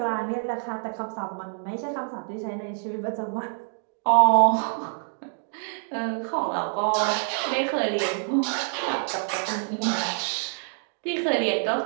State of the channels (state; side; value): silent; left; 61 dB below the other